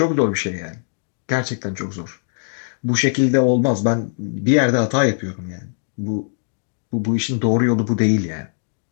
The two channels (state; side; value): silent; right; digital silence